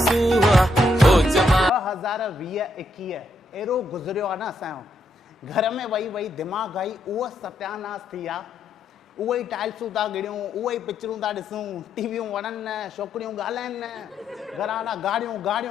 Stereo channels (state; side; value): normal; both; correlation 0.77